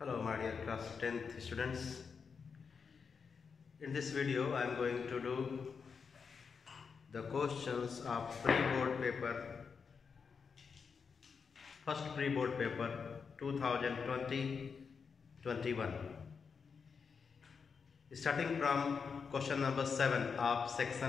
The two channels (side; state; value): right; quieter; 5.7 dB